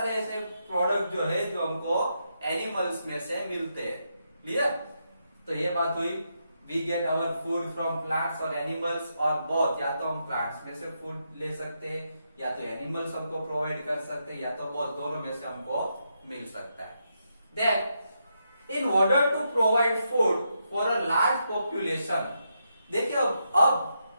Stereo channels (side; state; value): both; inverted; correlation -0.82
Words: ऐसे प्रोडक्ट जो है जो हमको एनिमल्स में से मिलते हैं। क्लियर? तो ये बात हुई, we get our food from plants और एनिमल्स और बोथ, या तो हम प्लांट्स में से फूड ले सकते हैं या तो एनिमल्स हमको प्रोवाइड कर सकते हैं, या तो बोथ, दोनों में से हमको मिल सकता है। Then in order to provide food for a large population, देखिए अब